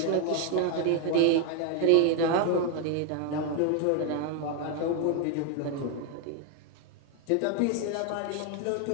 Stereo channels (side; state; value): both; different; correlation 0.01